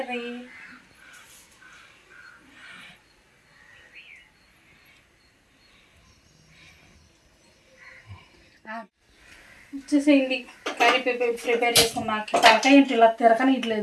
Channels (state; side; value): identical; both; correlation 1.00